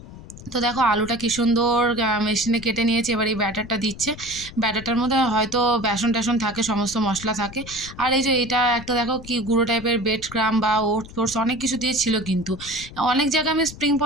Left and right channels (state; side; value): noise; left; rumble, 15 dB below the sound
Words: তো দেখো আলুটা কি সুন্দর মেশিনে কেটে নিয়েছে। এবার এই ব্যাটারটা দিচ্ছে। ব্যাটারটার মধ্যে হয়তো বেসন টেসন থাকে, সমস্ত মশলা থাকে। আর এই যে এটা একটা দেখো কি গুঁড়ো টাইপের বেড ক্রাম বা ওটস ফোটস অনেক কিছু দিয়ে ছিল। কিন্তু অনেক জায়গায় আমি স্প্রিং